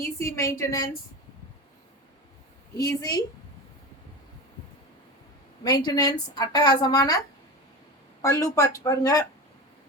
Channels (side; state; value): both; normal; correlation 0.27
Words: easy maintenance. அட்டகாசமான பல்லு பார்த்து பாருங்க.